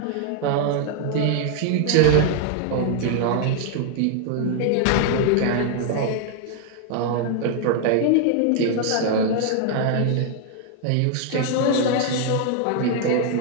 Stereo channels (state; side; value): different; both; correlation 0.00